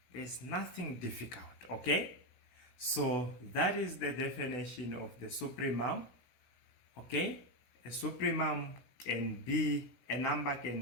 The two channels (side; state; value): right; late; 17 ms